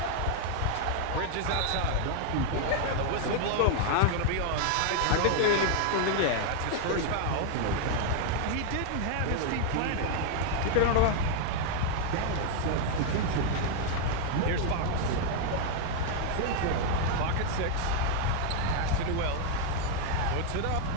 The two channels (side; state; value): both; different; correlation 0.00